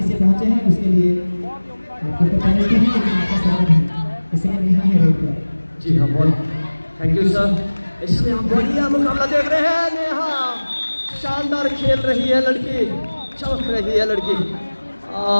से पहुंचे हैं, उसके लिए आपको पेनल्टी है, लेकिन आपका स्वागत है। इसलिए नेहा है रेड पर। जी हाँ, बहुत थैंक यू सर। इसमें हम बढ़िया मुकाबला देख रहे हैं। नेहा शानदार खेल रही है लड़की, चमक रही है लड़की,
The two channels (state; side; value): inverted; both; correlation -1.00